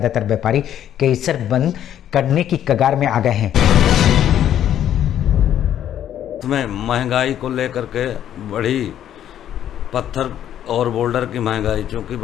व्यापारी क्रेशर बंद करने की कगार में आ गए हैं। इसमें महंगाई को लेकर के बढ़ी पत्थर और बोल्डर की महंगाई, चूँकि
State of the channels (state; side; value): quieter; right; 10.7 dB